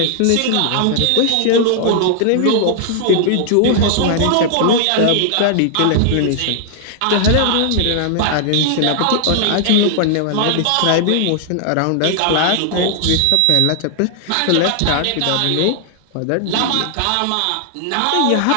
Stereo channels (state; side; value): different; both; correlation -0.01